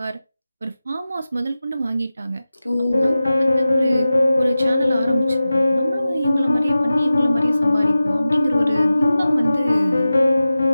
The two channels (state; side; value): inverted; both; correlation -0.95